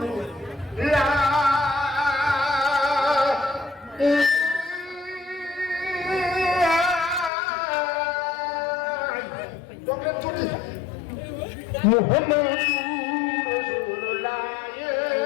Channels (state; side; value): drops out; right; at 7.3 s